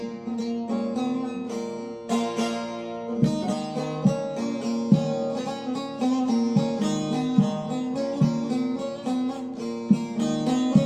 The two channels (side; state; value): both; identical; correlation 1.00